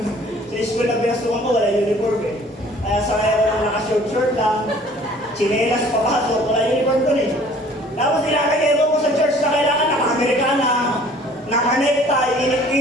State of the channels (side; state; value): both; normal; correlation 0.53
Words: Sa school na pinastukan ko, wala uniform eh. Kaya sakay ako lang naka-short lang, chinelas papasok, wala uniform ko eh. Tapos ilalagay ko sa church na kailangan naka-Amerikana, naka-necktie,